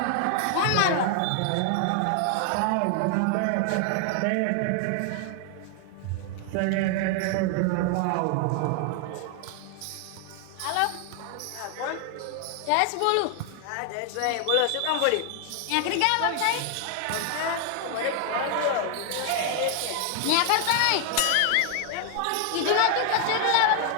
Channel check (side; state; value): both; different; correlation 0.00